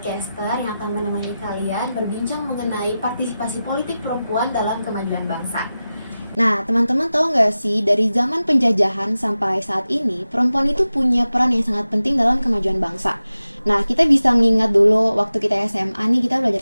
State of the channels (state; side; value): inverted; both; correlation -0.94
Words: yang akan menemani kalian berbincang mengenai partisipasi politik perempuan dalam kemajuan bangsa. Nah, teman-teman tahu nggak sih, dari zaman penjajahan sampai saat ini, perempuan itu punya peran yang sangat penting dalam kemajuan bangsa. Nah, kita bisa mengingat dulu waktu kita SMA nih, kita belajar